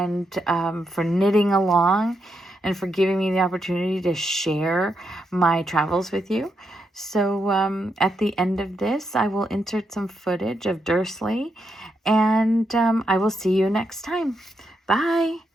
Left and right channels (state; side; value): normal; both; correlation 0.82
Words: for knitting along, and for giving me the opportunity to share my travels with you. So at the end of this, I will insert some footage of Dursley, and I will see you next time. Bye.